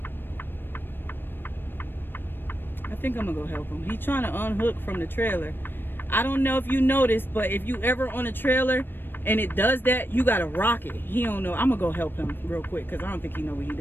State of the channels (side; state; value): right; late; 0.097 ms